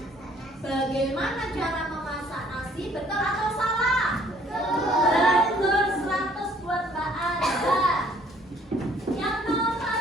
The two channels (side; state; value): both; normal; correlation 0.60